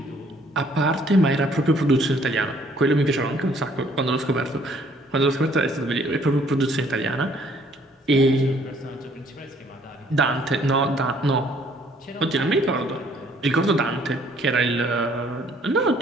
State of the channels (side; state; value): both; normal; correlation 0.62